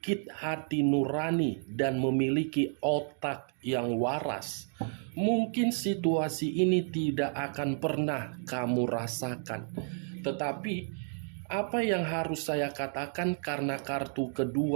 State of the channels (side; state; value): left; silent; 57 dB below the other